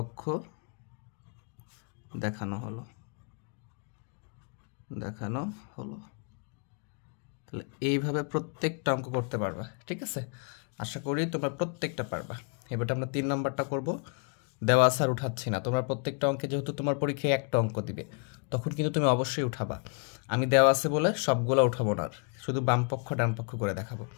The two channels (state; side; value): quieter; right; 39.6 dB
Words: দেখানো হলো। তাহলে এইভাবে প্রত্যেকটা অঙ্ক করতে পারবা, ঠিক আছে? আশা করি তোমরা প্রত্যেকটা পারবা। এবারে আমরা 3 নম্বরটা করব। দেওয়া আছে আর উঠাচ্ছি না, তোমরা প্রত্যেকটা অঙ্কে যেহেতু তোমার পরীক্ষায় একটা অঙ্ক দিবে, তখন কিন্তু তুমি অবশ্যই উঠাবা। আমি দেওয়া আছে বলে সবগুলো উঠাবো না, শুধু বাম পক্ষ ডান পক্ষ করে দেখাবো,